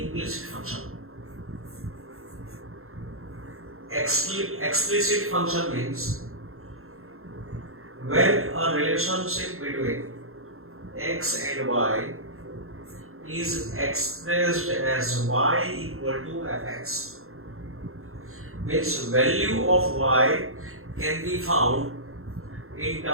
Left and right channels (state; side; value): late; left; 0.62 ms